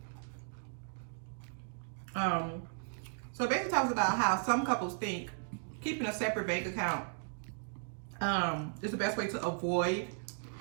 So it basically talks about how some couples think keeping a separate bank account is the best way to avoid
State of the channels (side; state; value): left; silent; digital silence